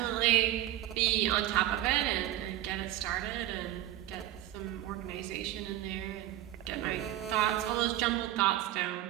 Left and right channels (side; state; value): left; quieter; 13.6 dB